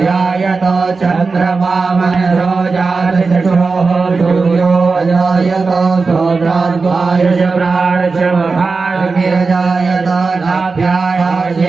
चन्द्रमा मनसो जातचक्षोः सूर्यो अजायत सोद्राद्वायुष प्राणच महार्गिरजायत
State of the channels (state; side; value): quieter; left; 4.3 dB